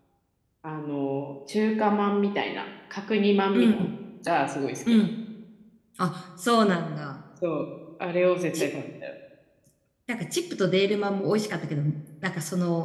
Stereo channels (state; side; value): identical; both; correlation 1.00